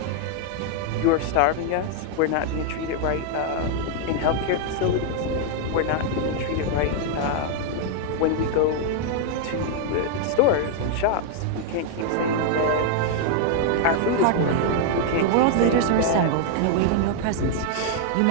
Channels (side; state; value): both; different; correlation 0.00